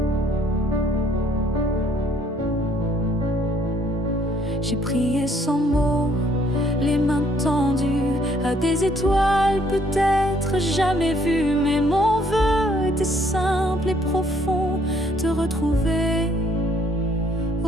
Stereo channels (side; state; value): both; normal; correlation 0.64